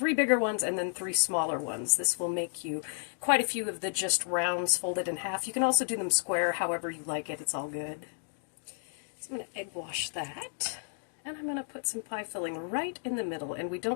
bigger ones and then 3 smaller ones. This will make you quite a few of the just rounds folded in half. You can also do them square, however you like it. It's all good. So I'm going to egg wash that, and I'm going to put some pie filling right in the middle, and we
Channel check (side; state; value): right; silent; digital silence